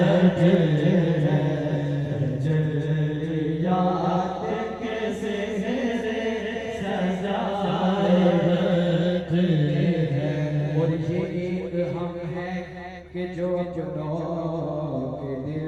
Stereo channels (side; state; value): both; identical; correlation 1.00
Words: तजल्ली जाते कैसे सजाए बैठे और ये एक हम हैं कि जो अपनों के दिल